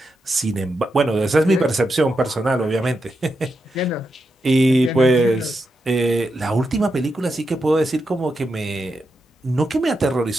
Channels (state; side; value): normal; both; correlation 0.86